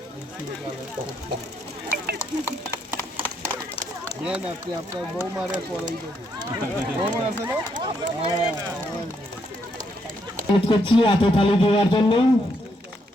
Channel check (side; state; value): both; normal; correlation 0.76